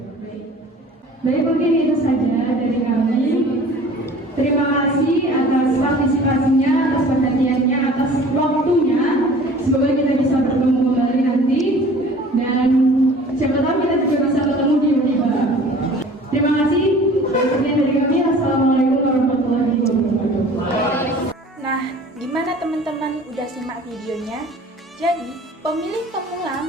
Baik, mungkin itu saja dari kami. Terima kasih atas partisipasinya, atas perhatiannya, atas waktunya. Semoga kita bisa bertemu kembali nanti dan siapa tahu kita juga bisa bertemu di Uniba. Terima kasih. Sekian dari kami. Assalamualaikum warahmatullahi wabarakatuh. Nah, gimana teman-teman udah simak videonya? Jadi, pemilih pemula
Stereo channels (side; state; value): both; normal; correlation 0.46